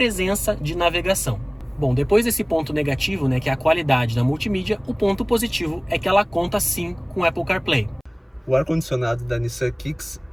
de navegação. Bom, depois desse ponto negativo, que é a qualidade da multimídia, o ponto positivo é que ela conta sim com Apple CarPlay. O ar-condicionado da Nissan Kicks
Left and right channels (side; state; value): both; identical; correlation 1.00